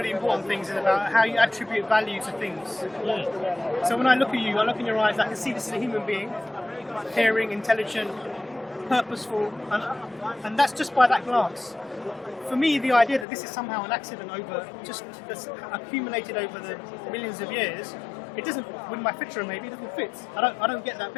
important things is about how you attribute value to things. So when I look at you, I look in your eyes, I can see this is a human being, caring, intelligent, purposeful, and that's just by that glance. For me, the idea that this is somehow an accident that's accumulated over the millions of years, it doesn't, with my picture maybe, it doesn't fit. I don't get that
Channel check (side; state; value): right; drops out; at 13.2 s